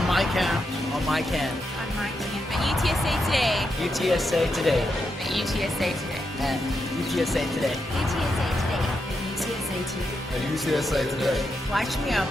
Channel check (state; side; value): normal; both; correlation 0.84